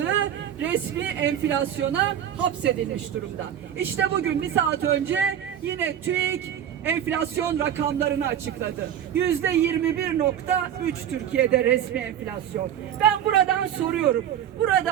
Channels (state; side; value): quieter; left; 9.9 dB